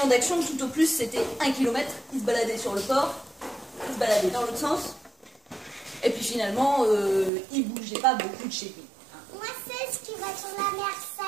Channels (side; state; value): left; drops out; at 7.3 s